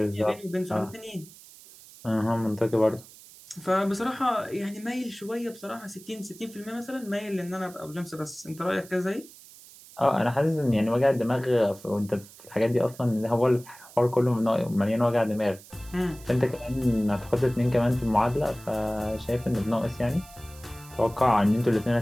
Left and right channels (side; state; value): right; noise; hiss, 21 dB below the sound